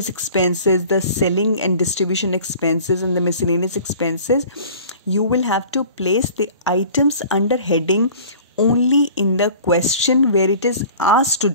expenses, the selling and distribution expenses and the miscellaneous expenses, you will have to place the items under heading only in the question where it is asked to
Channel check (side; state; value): both; inverted; correlation -0.45